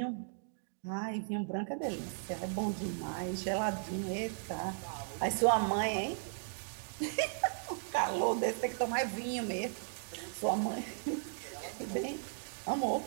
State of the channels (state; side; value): silent; left; digital silence